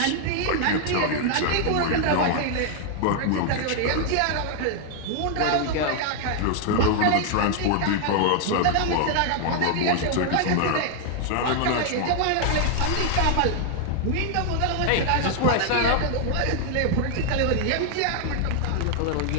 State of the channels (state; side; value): different; both; correlation 0.00